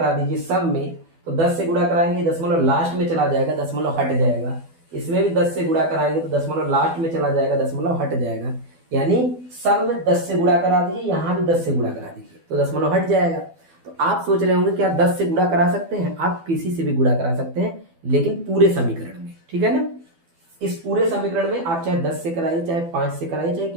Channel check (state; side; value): late; left; 12 ms